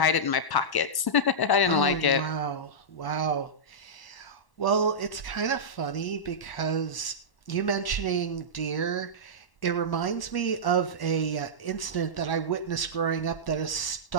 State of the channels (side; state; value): right; late; 1.1 ms